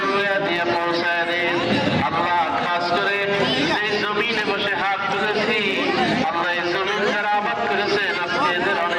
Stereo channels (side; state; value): both; identical; correlation 1.00